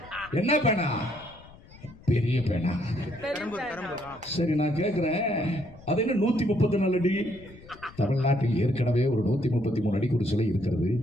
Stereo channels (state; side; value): noise; left; rumble, 21 dB below the sound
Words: என்ன பேனா? பெரிய பேனா. சரி, நான் கேட்கிறேன், அது என்ன 134 அடி? தமிழ்நாட்டில் ஏற்கனவே ஒரு 133 அடிக்கு ஒரு சிலை இருக்கிறது.